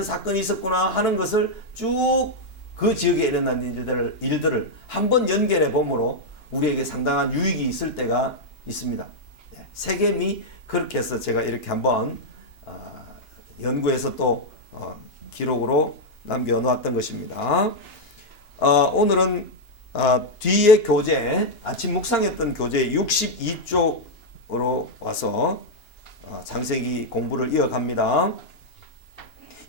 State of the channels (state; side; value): late; right; 2.9 ms